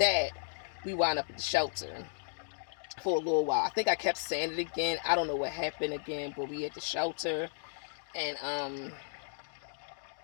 we wound up at the shelter for a little while. I think I kept saying it again. I don't know what happened again, but we at the shelter. And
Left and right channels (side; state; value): right; silent; digital silence